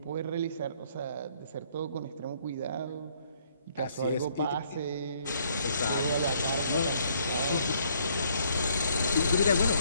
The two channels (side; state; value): both; inverted; correlation -0.66